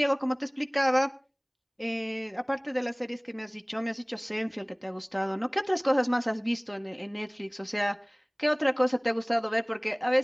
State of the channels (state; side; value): identical; both; correlation 1.00